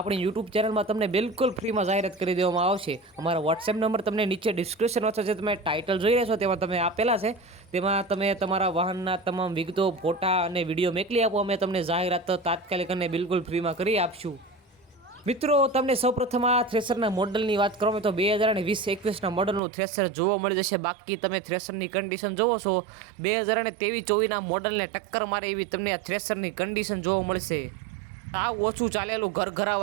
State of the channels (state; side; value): drops out; left; at 19.6 s